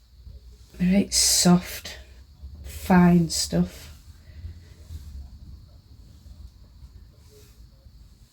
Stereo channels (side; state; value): both; identical; correlation 1.00